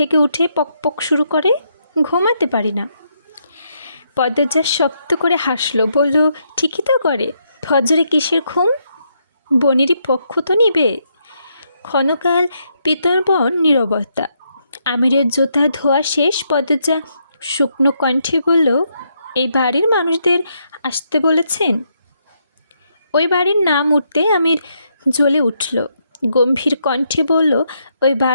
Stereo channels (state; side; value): inverted; both; correlation -0.77